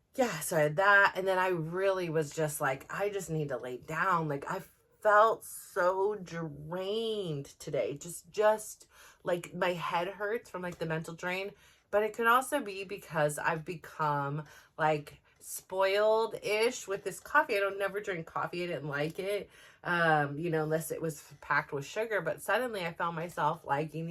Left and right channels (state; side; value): identical; both; correlation 1.00